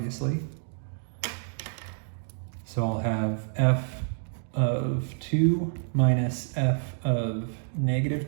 So I'll have f of 2 minus f of negative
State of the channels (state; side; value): silent; left; digital silence